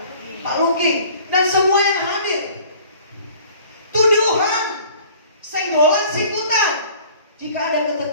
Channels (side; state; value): both; inverted; correlation -0.50